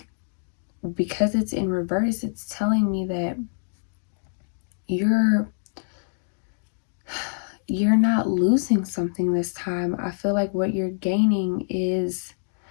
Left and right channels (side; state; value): right; silent; digital silence